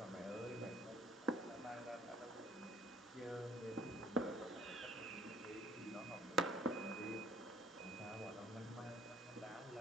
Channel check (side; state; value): both; normal; correlation 0.56